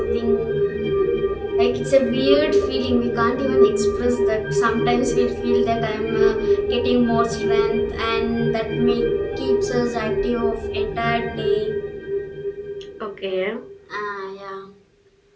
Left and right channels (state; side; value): identical; both; correlation 1.00